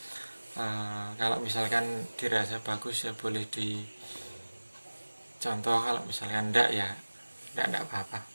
Kalau misalkan dirasa bagus ya boleh dicontoh, kalau misalkan enggak ya enggak apa-apa.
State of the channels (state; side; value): inverted; both; correlation -1.00